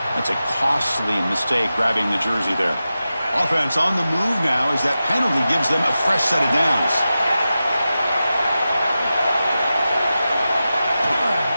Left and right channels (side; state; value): both; inverted; correlation -0.93